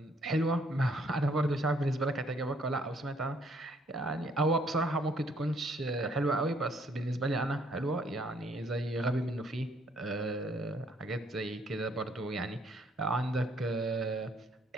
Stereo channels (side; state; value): both; normal; correlation 0.66